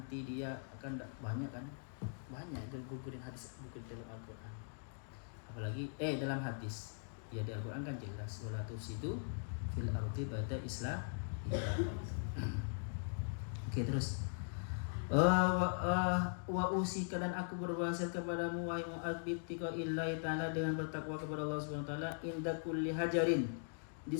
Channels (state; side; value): silent; right; digital silence